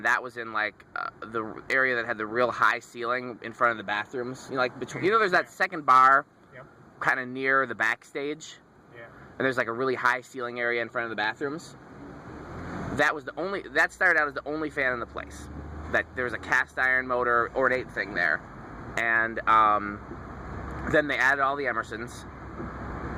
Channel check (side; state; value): both; identical; correlation 1.00